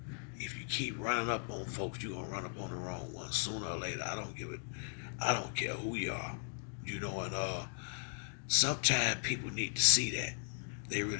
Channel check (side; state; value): right; silent; 53 dB below the other